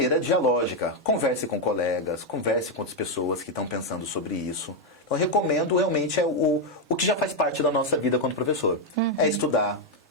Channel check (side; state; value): both; normal; correlation 0.02